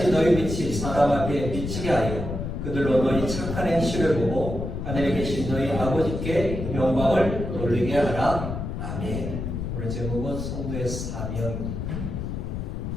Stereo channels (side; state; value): left; noise; rumble, 4 dB below the sound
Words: 너희 빛이 사람 앞에 비치게 하여 그들로 너희 착한 행실을 보고 하늘에 계신 너희 아버지께 영광을 돌리게 하라. 아멘. 오늘 제목은 성도의 사명입니다.